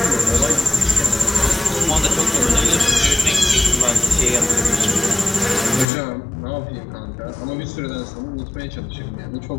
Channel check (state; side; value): drops out; right; at 5.9 s